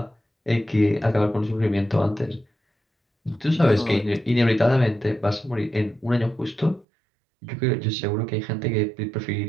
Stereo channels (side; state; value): left; drops out; at 6.9 s